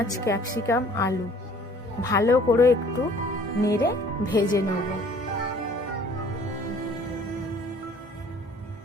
ক্যাপসিকাম, আলু ভালো করে একটু নেড়ে ভেজে নেব।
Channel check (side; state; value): both; normal; correlation 0.54